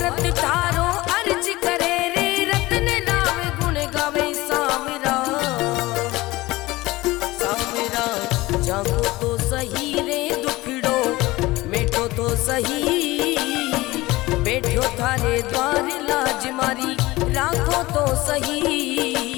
थारो अर्ज करे रे रत्न लावे गुण गावे। सावरा सावरा जागो तो सही रे दुखड़ो मिटो तो सही, बैठो थारे द्वार लाज मारी राखो तो सही,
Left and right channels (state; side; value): quieter; right; 19.6 dB